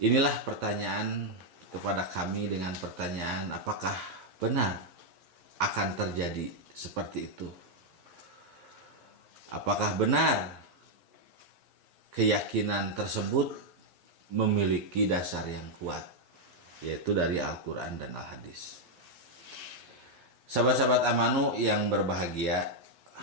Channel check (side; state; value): left; late; 11 ms